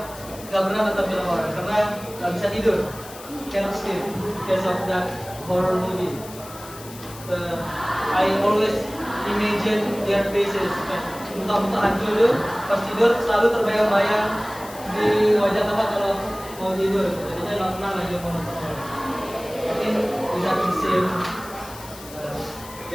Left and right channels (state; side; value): noise; left; hiss, 17 dB below the sound